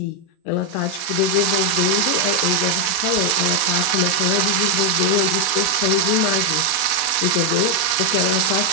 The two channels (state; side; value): late; right; 28 ms